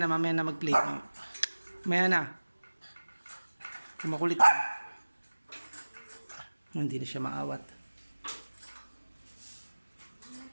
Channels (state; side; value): inverted; both; correlation -1.00